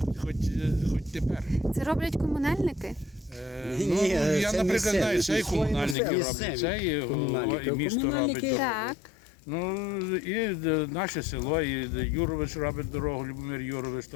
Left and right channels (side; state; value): right; drops out; at 6.0 s